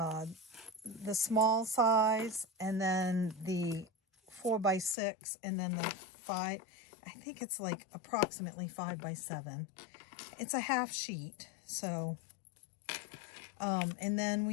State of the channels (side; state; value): right; drops out; at 5.0 s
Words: small size, and then the 4x6, and then the 5. I think it's like approximately 5x7. It's a half sheet. So, and then